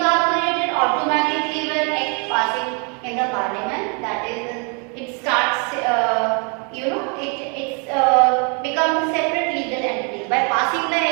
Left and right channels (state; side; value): quieter; left; 36.4 dB